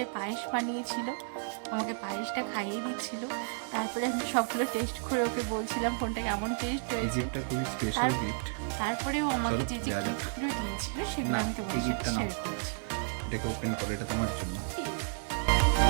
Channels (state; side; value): silent; left; digital silence